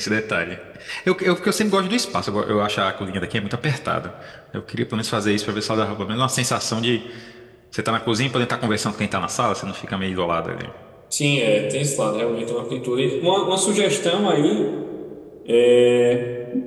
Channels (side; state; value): both; identical; correlation 1.00